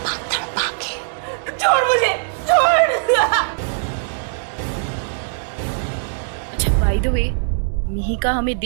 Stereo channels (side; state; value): left; silent; digital silence